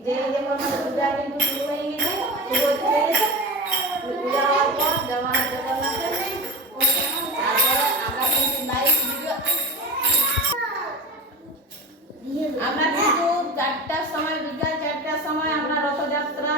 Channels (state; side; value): normal; both; correlation 0.31